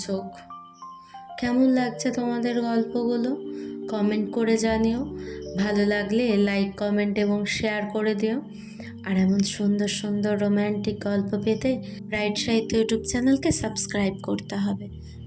কেমন লাগছে তোমাদের গল্পগুলো? কমেন্ট করে জানিও। ভালো লাগলে লাইক, কমেন্ট এবং শেয়ার করে দিও। আর এমন সুন্দর সুন্দর রোম্যান্টিক গল্প পেতে ব্রাইট সাহিত্য ইউটিউব চ্যানেলকে সাবস্ক্রাইব করতে হবে।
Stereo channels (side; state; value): both; identical; correlation 1.00